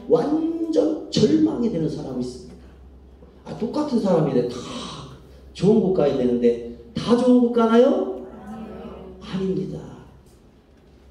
완전 절망이 되는 사람이 있습니다. 똑같은 사람인데 다 좋은 곳 가야 되는데 다 좋은 곳 가나요? 아닙니다.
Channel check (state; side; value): identical; both; correlation 1.00